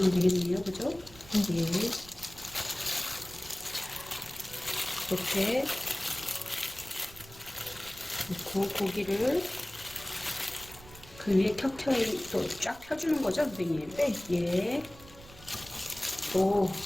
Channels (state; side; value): noise; right; rumble, 19 dB below the sound